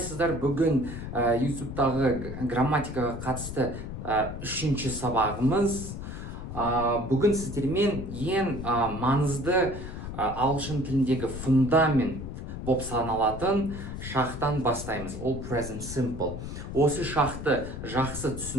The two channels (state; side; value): noise; left; rumble, 8 dB below the sound